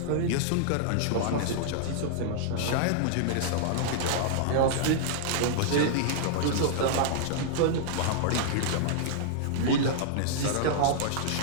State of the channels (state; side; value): different; both; correlation -0.01